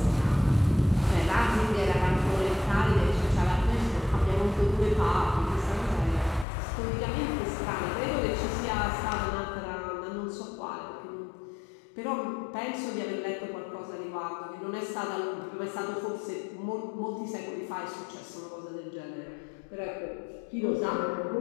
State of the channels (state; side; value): drops out; right; at 6.5 s